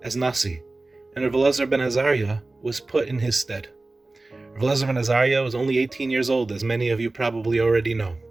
as Nasi, and Rav Elazar ben Azariah was put in his stead. Rav Elazar ben Azariah was only 18 years old, as many of you probably already know,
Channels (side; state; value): left; quieter; 3.1 dB